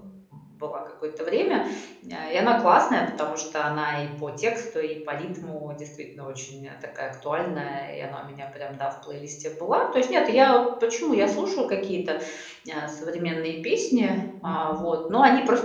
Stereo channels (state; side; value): identical; both; correlation 1.00